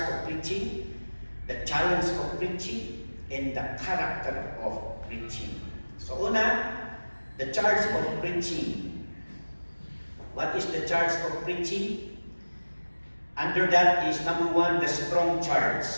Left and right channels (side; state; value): both; inverted; correlation -1.00